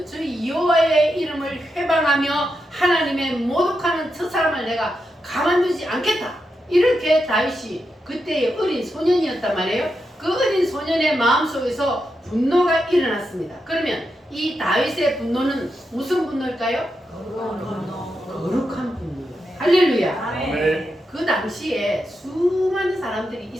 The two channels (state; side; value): normal; both; correlation 0.86